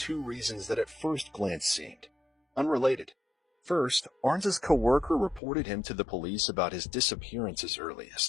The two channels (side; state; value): right; drops out; at 5.4 s